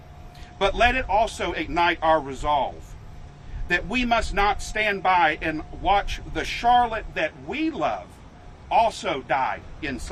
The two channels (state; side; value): identical; both; correlation 1.00